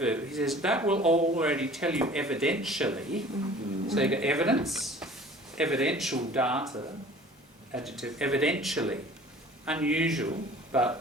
He says, that will already tell you evidentially. So you got evidence, evidential data, adjective, evidentially. Unusual,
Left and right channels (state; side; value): normal; both; correlation 0.47